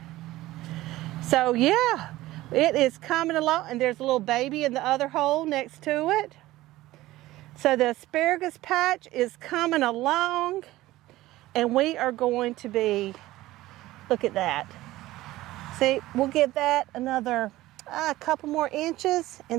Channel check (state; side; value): quieter; left; 16.9 dB